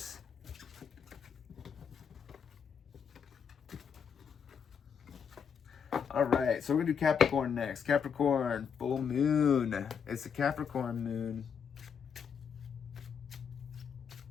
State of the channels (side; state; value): right; quieter; 6.9 dB